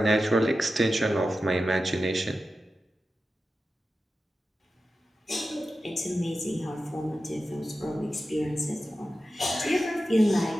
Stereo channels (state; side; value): normal; both; correlation 0.92